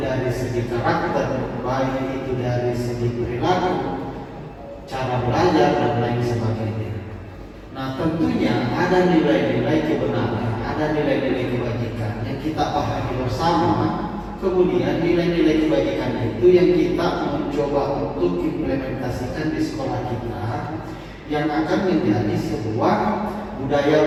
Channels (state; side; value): identical; both; correlation 1.00